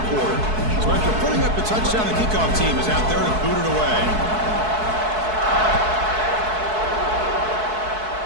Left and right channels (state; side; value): late; left; 4.6 ms